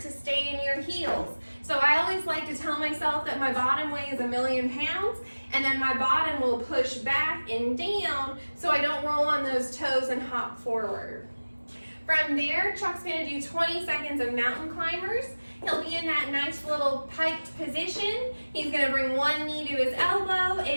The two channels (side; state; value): both; inverted; correlation -1.00